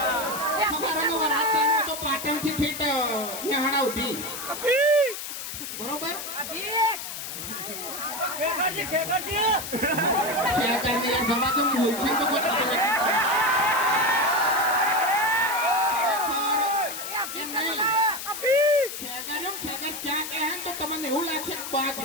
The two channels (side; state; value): left; noise; hiss, 7 dB below the sound